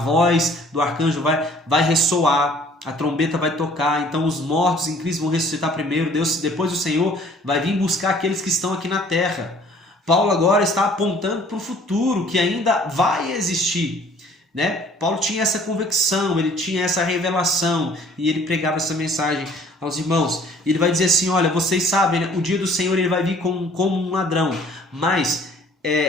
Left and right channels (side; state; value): both; normal; correlation 0.55